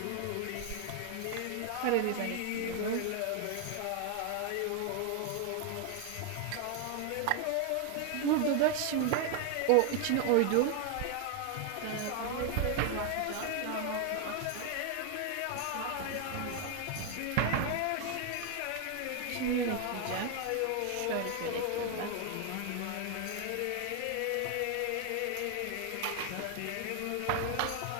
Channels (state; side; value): different; both; correlation 0.01